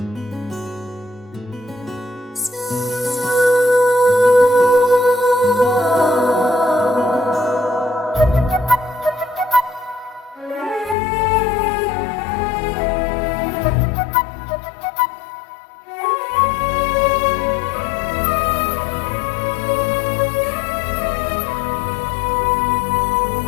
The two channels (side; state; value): right; drops out; at 11.0 s